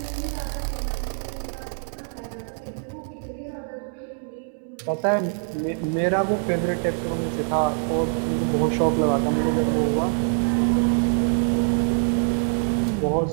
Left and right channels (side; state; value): left; silent; digital silence